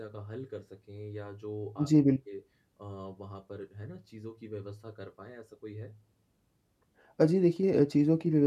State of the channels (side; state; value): both; identical; correlation 1.00